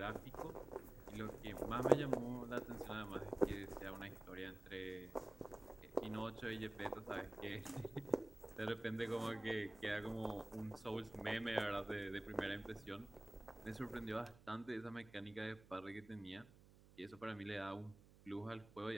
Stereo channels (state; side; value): noise; right; hum, 22 dB below the sound